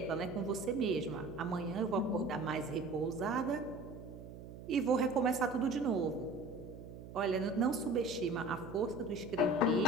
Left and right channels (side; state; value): right; noise; hum, 13 dB below the sound